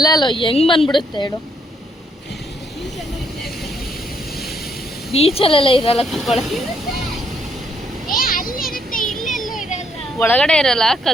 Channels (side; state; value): both; normal; correlation 0.72